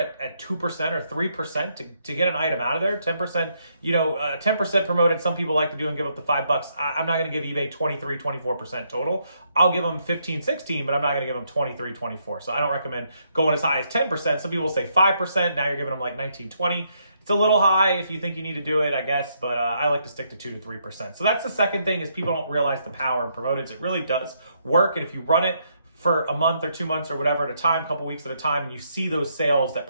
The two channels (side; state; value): both; inverted; correlation -0.75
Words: at 2% or 3% to get an item out of there. 10%, 10% promoted. Some people like to do and give up the $5. I'm not going to give eBay 23, 24% total. I'll give them 15, 16, but I'm not going to give them 23, 24. So I don't recommend going as high as 10%. Some people say 5%. Now you're giving them like 19, 20. It's a little high if you think you need to do it, I guess, but I like to stick to 2 to 3%. So that's the second thing, is people don't realize the power in promoteds. It really does work, and if you run it for a month or 2 months or whatever at a time, a couple weeks at a time, and you see those sales that